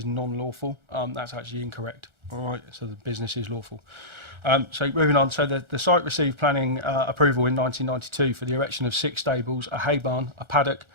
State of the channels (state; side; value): late; left; 1.4 ms